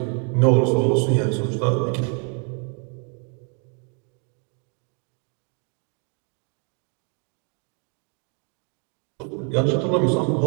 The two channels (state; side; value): quieter; left; 38.1 dB